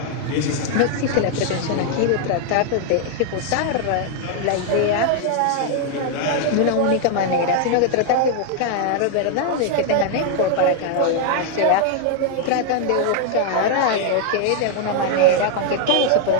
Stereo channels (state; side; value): different; both; correlation 0.00